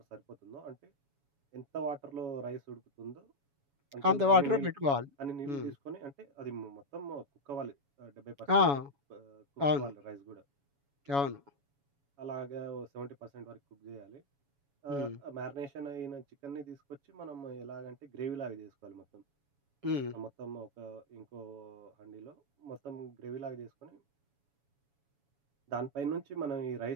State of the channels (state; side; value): late; left; 7.1 ms